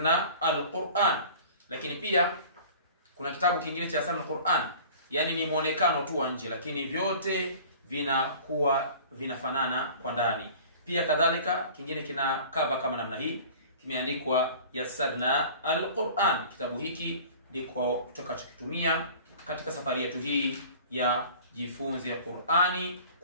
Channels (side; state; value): both; inverted; correlation -0.44